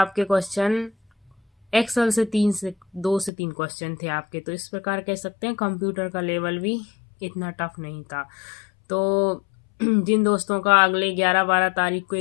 क्वेश्चन एक्सेल से 2 से 3 क्वेश्चन थे आपके। तो इस प्रकार कह सकते हैं कंप्यूटर का लेवल भी इतना टफ नहीं था। तो जिन दोस्तों का अगले 11-12 तारीख को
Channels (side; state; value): right; drops out; at 3.3 s